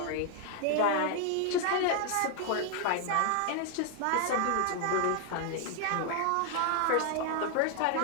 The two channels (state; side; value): different; both; correlation 0.00